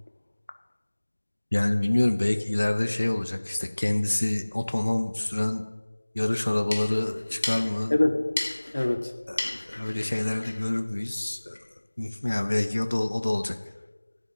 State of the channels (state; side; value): inverted; both; correlation -1.00